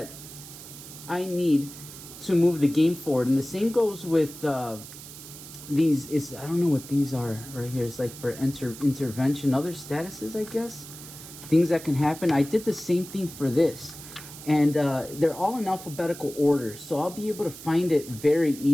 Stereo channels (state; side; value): noise; right; hiss, 15 dB below the sound